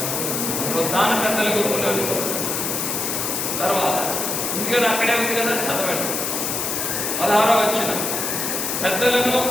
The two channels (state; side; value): noise; left; hiss, 1 dB below the sound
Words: పునరుద్ధాన పెద్దల గుంపులోనికి వస్తున్నాను. తర్వాత ఉంది కదా, అక్కడే ఉంది కదా, చదవండి 16వ వచనం. పెద్దలను